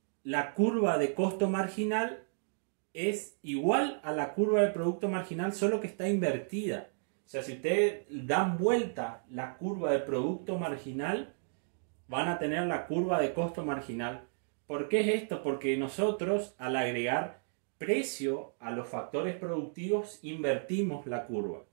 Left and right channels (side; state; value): left; silent; digital silence